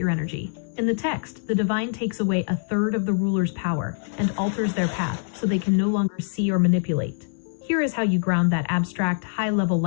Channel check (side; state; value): right; silent; 60 dB below the other